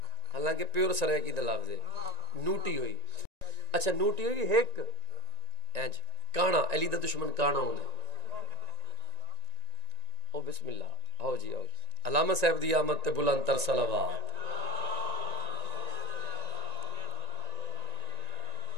حالانکہ پیور سرائے کی دلافظ ہے نوٹی ہوئی. اچھا نوٹی ہوئی ایک اینج کانا علی دا دشمن کانا ہونے. او بسم اللہ آؤ جی آؤ. علامہ صاحب دی آمد تے بلند تر صلوات.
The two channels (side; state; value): left; late; 1.9 ms